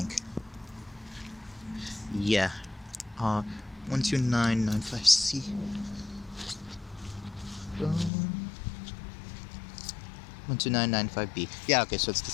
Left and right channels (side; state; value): right; drops out; at 8.1 s